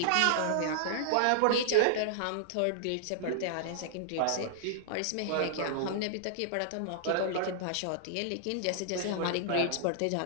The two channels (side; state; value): both; different; correlation -0.01